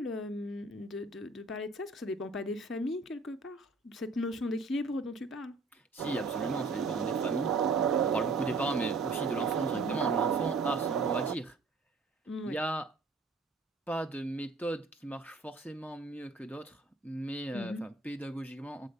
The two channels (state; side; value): quieter; left; 3.9 dB